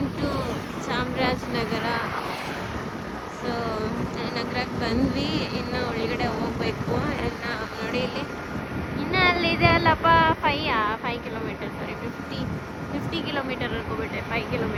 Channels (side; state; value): both; identical; correlation 1.00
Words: into Chamarajanagar. So ನಗರಕ್ಕೆ ಬಂದ್ವಿ, ಇನ್ನು ಒಳಗಡೆ ಹೋಗ್ಬೇಕು. ಎಲ್ಲ ನೋಡಿ ಇಲ್ಲಿ ಇನ್ನು ಅಲ್ಲಿದೆ ಅಲ್ಲಪ್ಪ 5 ಕಿಲೋಮೀಟರ್, ಸಾರಿ 50 ಕಿಲೋಮೀಟರ್ ಅನ್ಕೋಬಿಟ್ಟೆ. 5